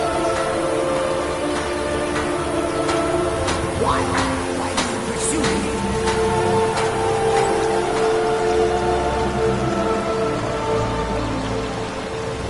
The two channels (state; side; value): identical; both; correlation 1.00